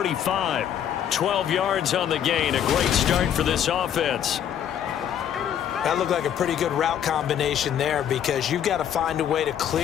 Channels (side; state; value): right; quieter; 9.6 dB